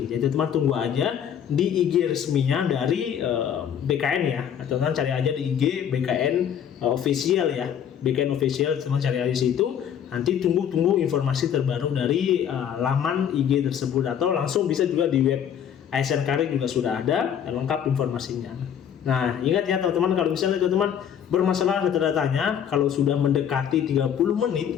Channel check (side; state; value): right; quieter; 8.8 dB